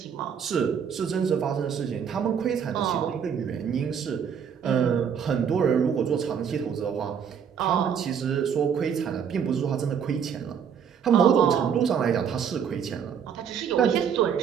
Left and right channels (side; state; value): left; quieter; 7.6 dB